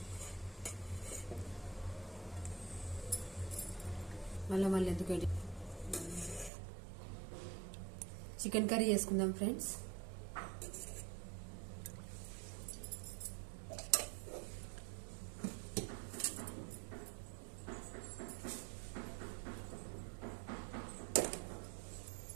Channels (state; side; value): drops out; left; at 6.5 s